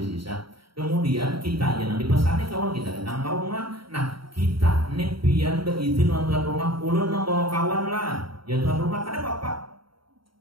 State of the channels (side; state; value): left; late; 0.74 ms